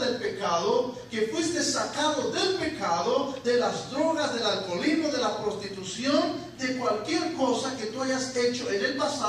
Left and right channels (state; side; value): identical; both; correlation 1.00